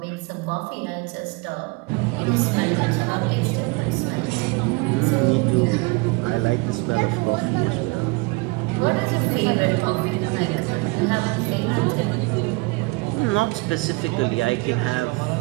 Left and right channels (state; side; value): quieter; left; 26.2 dB